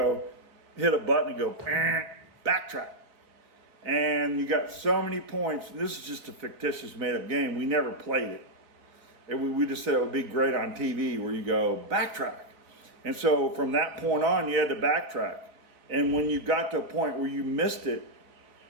hit a button and go, backtrack. And you got so many points. This is just a fictitious made-up game. We never played it. We just said it would be great on TV where you go, backtrack. And so from that point on, you had to backtrack. And when you got to a point where you missed it,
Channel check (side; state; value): left; late; 3.9 ms